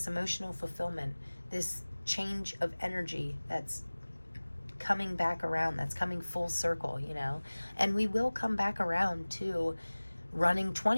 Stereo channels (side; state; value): both; inverted; correlation -1.00